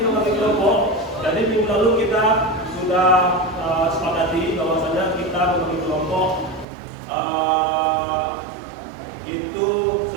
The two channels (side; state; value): left; drops out; at 6.7 s